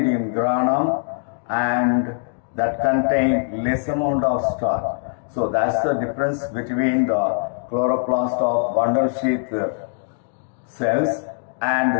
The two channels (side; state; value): right; silent; digital silence